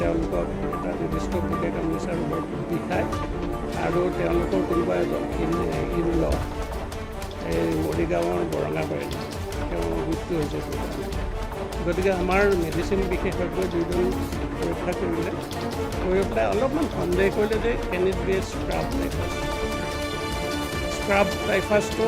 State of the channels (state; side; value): identical; both; correlation 1.00